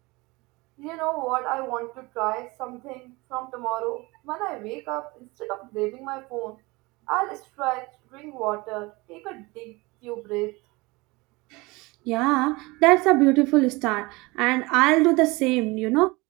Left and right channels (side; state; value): left; quieter; 23.7 dB